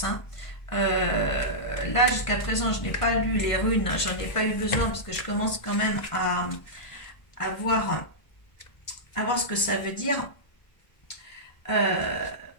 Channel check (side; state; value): right; late; 1.5 ms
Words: Hein. Là jusqu'à présent je n'ai pas lu les runes, j'en ai pas eu besoin parce que je commence quand même à voir ce que ça veut dire.